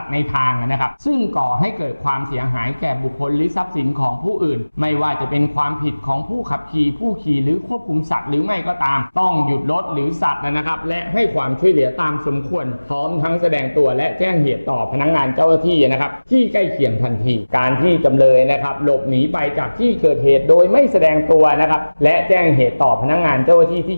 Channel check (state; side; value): inverted; both; correlation -1.00